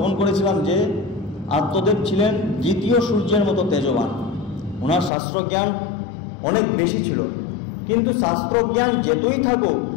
করেছিলাম যে আত্মদেব ছিলেন দ্বিতীয় সূর্যের মতো তেজবান। ওনার শাস্ত্রজ্ঞান অনেক বেশি ছিল, কিন্তু শাস্ত্রজ্ঞান যেতই থাকুক,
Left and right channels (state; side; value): drops out; right; at 5.1 s